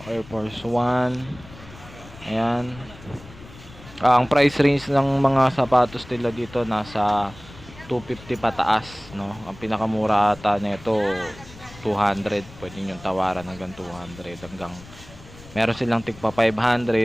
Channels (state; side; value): noise; left; rumble, 19 dB below the sound